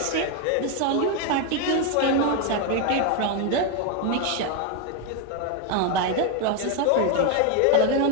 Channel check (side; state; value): both; different; correlation 0.01